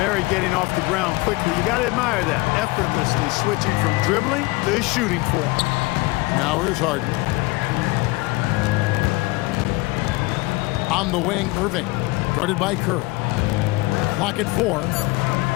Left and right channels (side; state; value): right; quieter; 22.3 dB